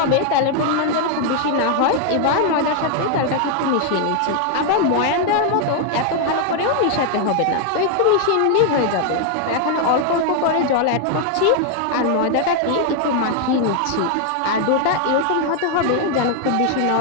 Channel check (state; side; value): different; both; correlation 0.00